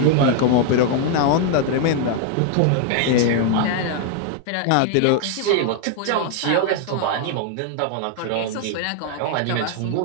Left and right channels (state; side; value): different; both; correlation 0.00